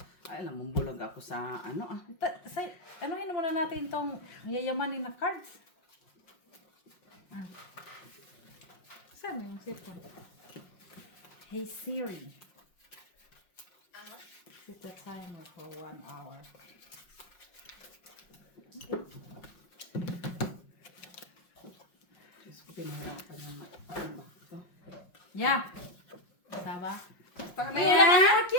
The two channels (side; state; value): right; late; 5.5 ms